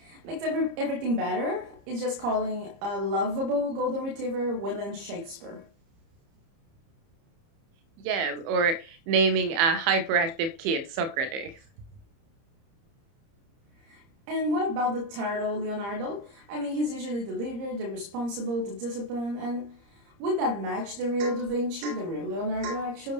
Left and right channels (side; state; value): left; late; 30 ms